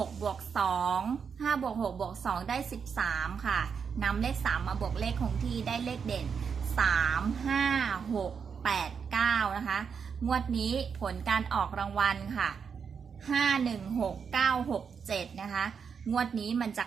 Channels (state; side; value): quieter; left; 6.4 dB